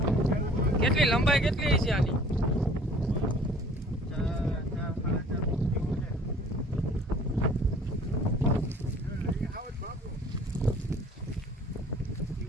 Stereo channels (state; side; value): normal; both; correlation 0.52